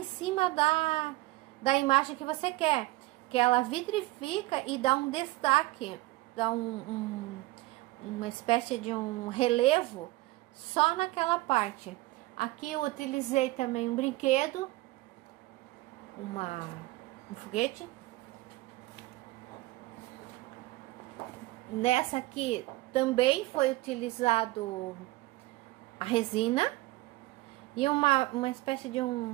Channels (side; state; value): left; quieter; 20.0 dB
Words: cima da imagem que você quer. Que ela vitrifica e dá um destaque, dá uma espécie de um relevo só naquela parte. Aqui eu utilizei também um brinquedo, um foguete. Nessa aqui também foi utilizado a resina e uma espécie de